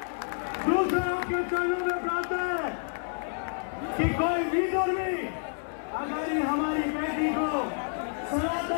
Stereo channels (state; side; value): silent; right; digital silence